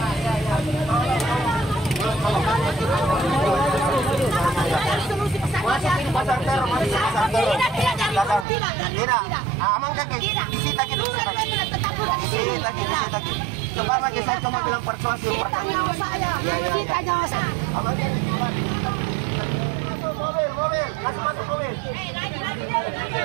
Tidak. Aman kakek. Disita kita. Coba pakai saya cuma bilang persuasif pertama. Kita nyawa saya. Mobil. Masuk mobil.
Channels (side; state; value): left; drops out; at 8.5 s